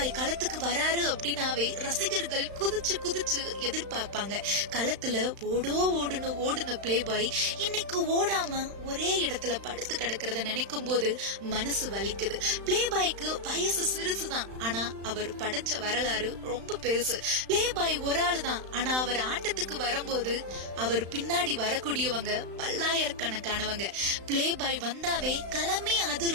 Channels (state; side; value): late; left; 35 ms